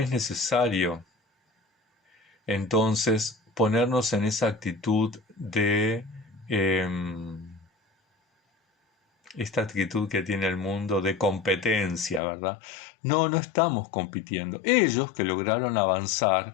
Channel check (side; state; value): right; drops out; at 12.2 s